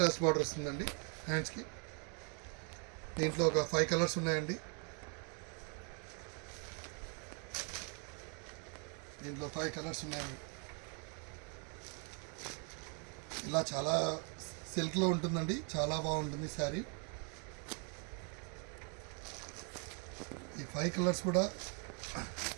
బార్డర్ వస్తుందండి హ్యాండ్స్కి. దీంట్లో ఒక 5 కలర్స్ ఉన్నాయండి. దీంట్లో 5 కలర్స్ ఉన్నాయండి. ఇలా చాలా సిల్క్లో ఉంటుందండి, చాలా బాగుంటుంది శారీ. ఈ 5 కలర్స్ కూడా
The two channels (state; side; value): quieter; left; 38.2 dB